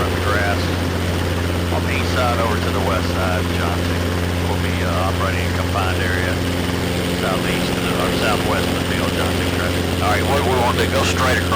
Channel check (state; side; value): identical; both; correlation 1.00